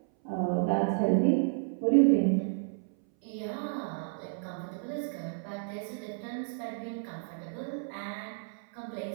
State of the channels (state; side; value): silent; left; 57 dB below the other